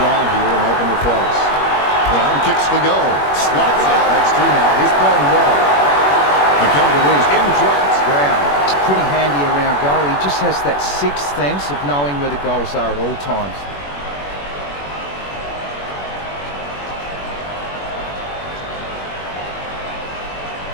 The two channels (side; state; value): right; late; 21 ms